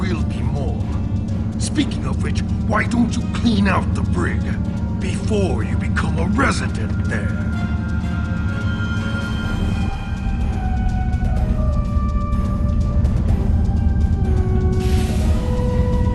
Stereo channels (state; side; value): identical; both; correlation 1.00